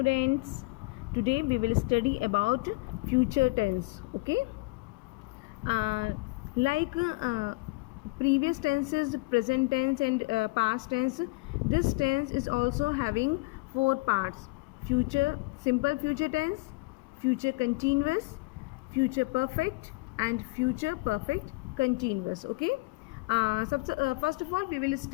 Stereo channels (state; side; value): quieter; right; 26.0 dB